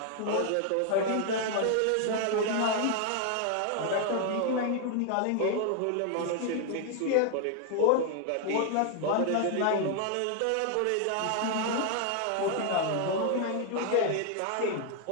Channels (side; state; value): both; different; correlation 0.00